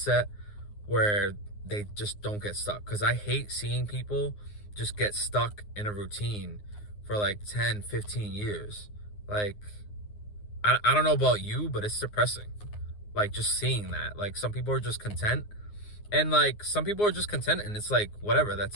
where they just don't get stuck. Because I hate seeing people just get stuck in a routine for like 10, 15 years. Like, I don't know about you, but it's depressing. Like, just seeing that. Like, some people are just content, and like, some people are just content, and it's like, whatever,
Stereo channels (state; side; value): late; right; 9.6 ms